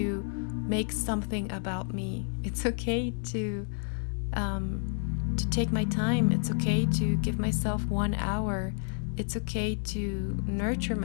make something about me. It's okay to take my time. It's okay to give myself 1 hour. It's okay to nurture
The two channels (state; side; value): silent; right; 58 dB below the other